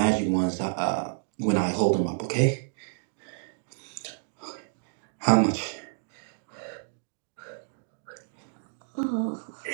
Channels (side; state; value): left; silent; digital silence